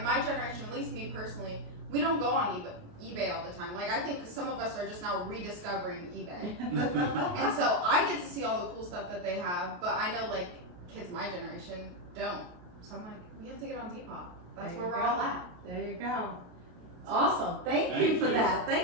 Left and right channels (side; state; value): left; late; 28 ms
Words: my generation, at least me personally, we don't go on eBay all the time. Like I think some of us are just now rediscovering eBay. And so I get to see all the cool stuff that they have, but I know like kids my generation don't. So I'm like, we have to get on Depop. That's where we're all at. There you go. Awesome. Thank you for that.